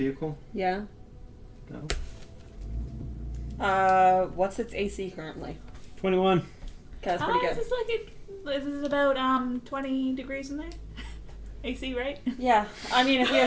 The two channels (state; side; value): identical; both; correlation 1.00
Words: vehicle? Yeah. No. What's its AC currently? 21. Okay, that's pretty good. This is about 20 degrees in there. AC, right? Yeah, I mean, if we